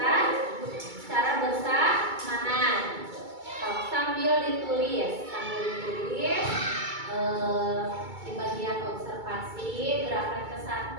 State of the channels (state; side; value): late; left; 2.3 ms